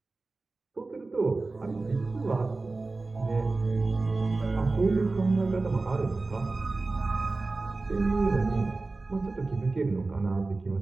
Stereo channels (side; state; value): left; quieter; 3.5 dB